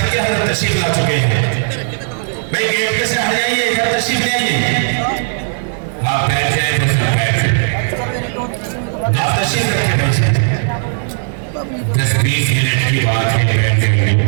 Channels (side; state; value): left; silent; digital silence